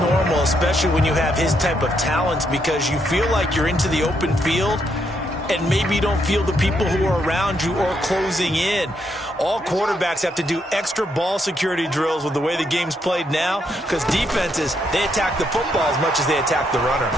especially when you have his type of talents, because you feel like you're into the open field and maybe you don't feel the people who are around you or closing in. All quarterbacks have to do extra ball security drills with the way the game's played now because defenses, they attack the football as much as they attack the runner.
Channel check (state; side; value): normal; both; correlation 0.77